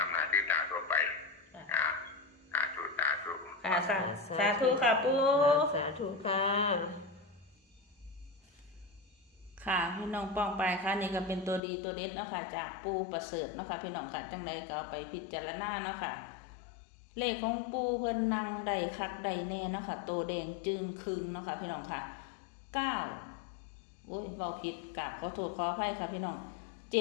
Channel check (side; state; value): right; drops out; at 11.6 s